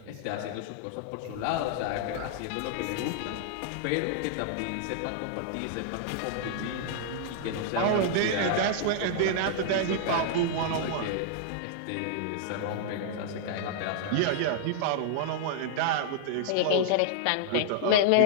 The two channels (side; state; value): both; different; correlation -0.01